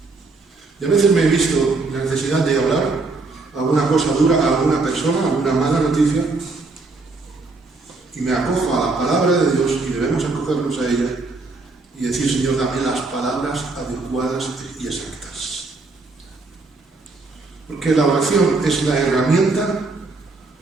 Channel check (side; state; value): left; quieter; 3.6 dB